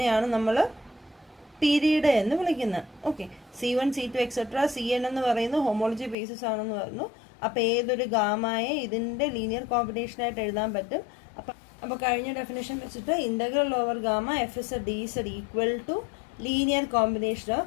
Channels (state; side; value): drops out; right; at 6.2 s